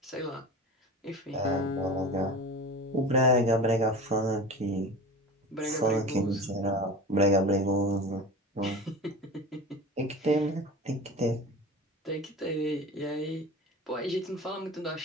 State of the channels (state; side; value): normal; both; correlation 0.34